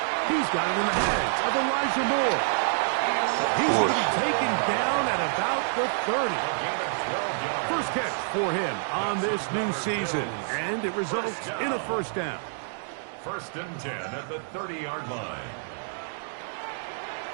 He's got it in the hands of Elijah Moore. He's going to be taken down at about the 30. First catch for him on this new season, and it results in a first down. 1st and 10 at the 30-yard line.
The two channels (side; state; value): left; silent; digital silence